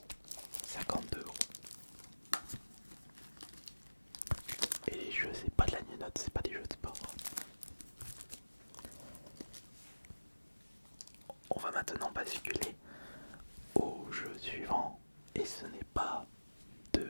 52€. Et les jeux, c'est pas de la note, c'est pas des jeux de sport. On va maintenant basculer au jeu suivant. Et ce n'est pas de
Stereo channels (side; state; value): both; inverted; correlation -1.00